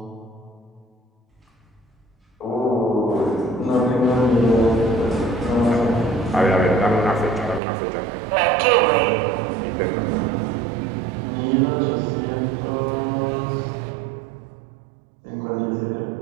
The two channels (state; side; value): drops out; left; at 7.6 s